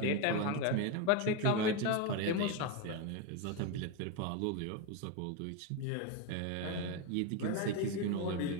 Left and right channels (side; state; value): both; different; correlation 0.03